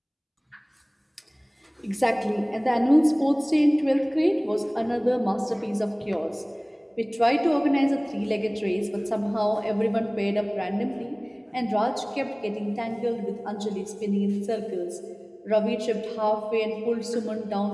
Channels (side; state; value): both; identical; correlation 1.00